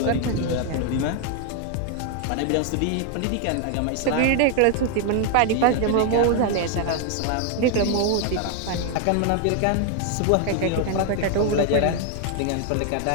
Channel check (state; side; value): different; both; correlation 0.00